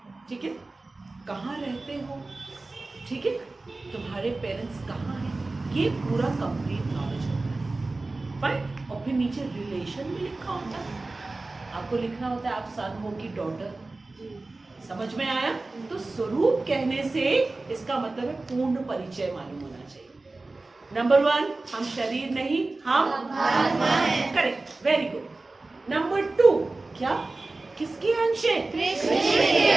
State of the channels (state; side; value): quieter; left; 3.3 dB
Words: ठीक है। कहाँ रहते हो, ठीक है, तुम्हारे पेरेंट्स कहाँ हैं, ये पूरा कंप्लीट नॉलेज होता है, फाइन। और फिर नीचे रिलेशन भी लिखा होता है, आपको लिखना होता है आप सन हो कि डॉटर। समझ में आया? तो स्वरूप कहने से इसका मतलब है पूर्ण परिचय मालूम होना चाहिए। नंबर 1, हम शरीर नहीं, हम आत्मा हैं। Correct, very good. नंबर 2, क्या? किसके अंश है? कृष्ण के